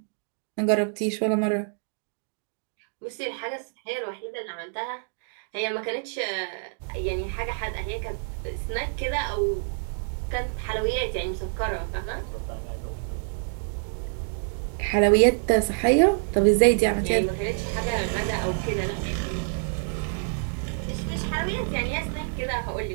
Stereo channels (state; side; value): silent; left; digital silence